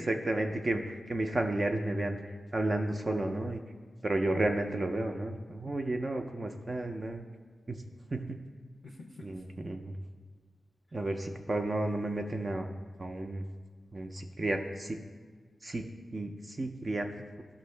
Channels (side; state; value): both; normal; correlation 0.93